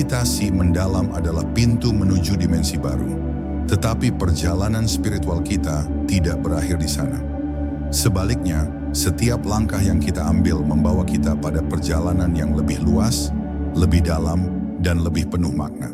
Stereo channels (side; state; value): both; identical; correlation 1.00